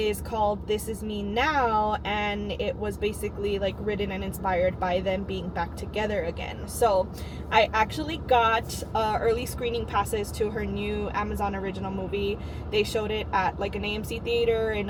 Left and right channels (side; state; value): both; identical; correlation 1.00